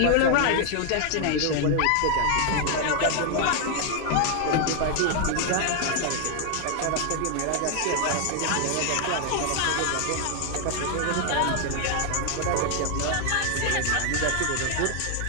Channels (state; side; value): different; both; correlation 0.00